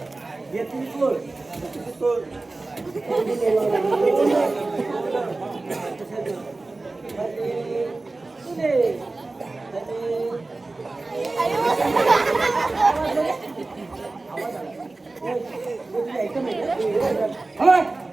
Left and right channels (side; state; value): left; quieter; 3.3 dB